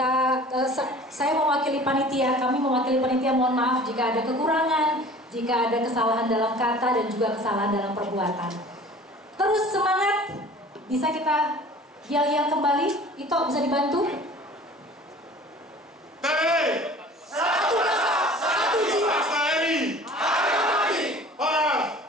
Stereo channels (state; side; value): normal; both; correlation 0.45